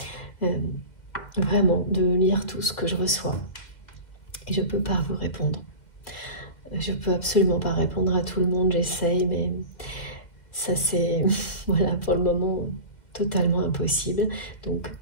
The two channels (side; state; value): right; late; 2.1 ms